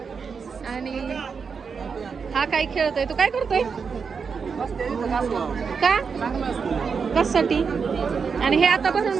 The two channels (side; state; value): left; quieter; 5.7 dB